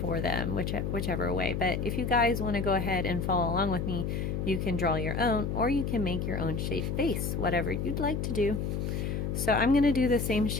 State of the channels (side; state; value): left; noise; hum, 1 dB below the sound